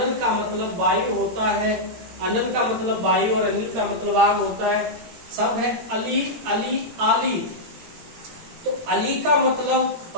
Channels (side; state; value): left; late; 17 ms